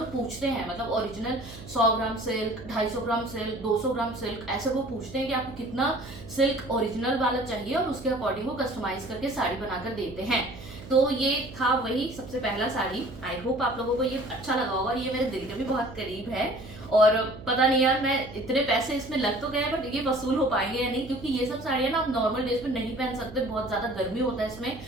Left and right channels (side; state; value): right; noise; hum, 15 dB below the sound